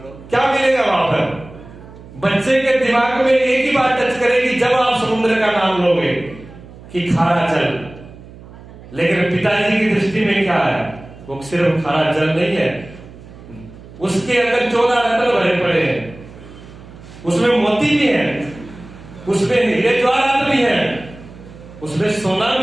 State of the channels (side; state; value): right; noise; hum, 19 dB below the sound